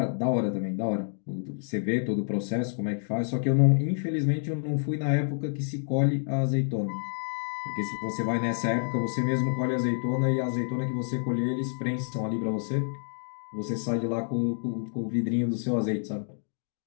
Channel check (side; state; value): right; silent; digital silence